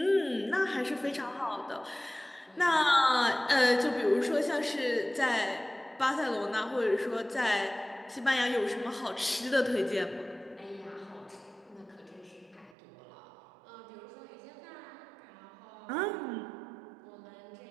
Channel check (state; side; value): drops out; left; at 12.8 s